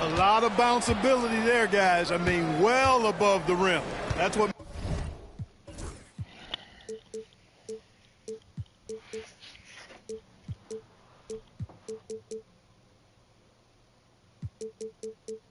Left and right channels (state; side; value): identical; both; correlation 1.00